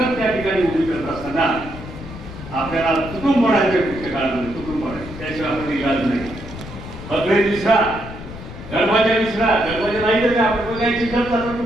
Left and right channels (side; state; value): left; noise; rumble, 12 dB below the sound